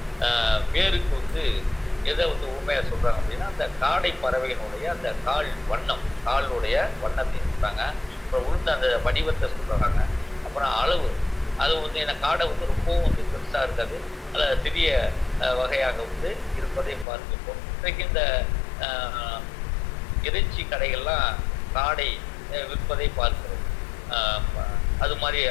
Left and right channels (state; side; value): drops out; right; at 17.1 s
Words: பேருக்கு வந்து எதை வந்து ஊமையாக சொல்கிறாங்க அப்படின்னா அந்த காடை பறவையினுடைய அந்த காலுடைய வண்ணத்தை சொல்கிறாங்க. அப்புறம் உளுந்த அந்த வடிவத்தை சொல்கிறாங்க. அப்புறம் அளவு, அது வந்து என்ன காடை வந்து ரொம்பவும் வந்து பெருசாக இருக்காது, அதில் சிறிய வகையாக வந்து இருப்பதை பார்த்துப்போம். இன்றைக்கு இந்த இறைச்சி கடைகள்லாம் காடை விற்பதை பார்க்கிறோம். அது மாதிரி